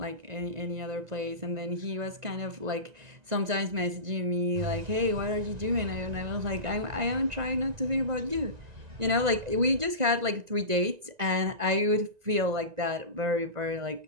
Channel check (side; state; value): left; late; 1.9 ms